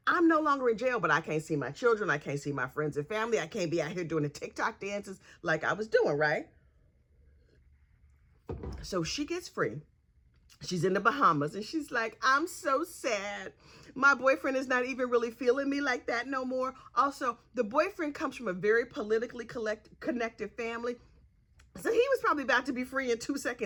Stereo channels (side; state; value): both; identical; correlation 1.00